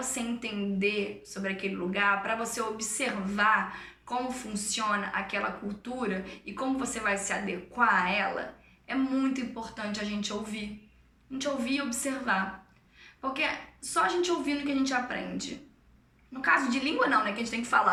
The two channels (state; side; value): identical; both; correlation 1.00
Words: entender sobre aquele lugar, para você observar como funciona aquela cultura e como você vai se adequar a ela, é muito importante a gente ouvir. A gente ouvir e observar. Porque só a gente ouvindo que a gente aprende. No caso de língua não, né? Que a gente tem que